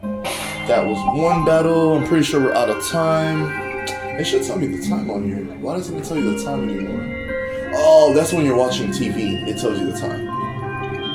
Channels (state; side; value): identical; both; correlation 1.00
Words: That was one battle. I'm pretty sure we're out of time. It should tell me the time on here. Why doesn't it tell you the time anymore? Oh, that's when you're watching TV. It tells you the time.